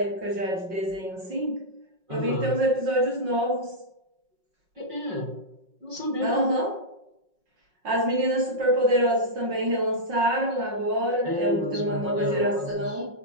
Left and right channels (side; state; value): left; late; 5.5 ms